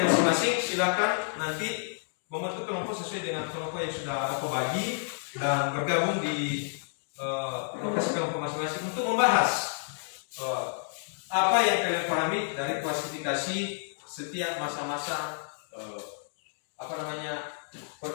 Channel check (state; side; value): silent; right; digital silence